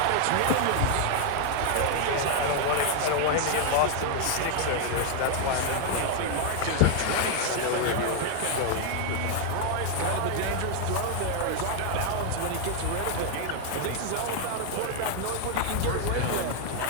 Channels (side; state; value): both; different; correlation 0.00